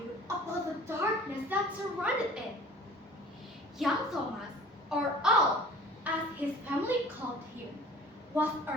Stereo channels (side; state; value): both; normal; correlation 0.45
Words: about the darkness that surrounded it. Young Thomas, or Al, as his family called him, was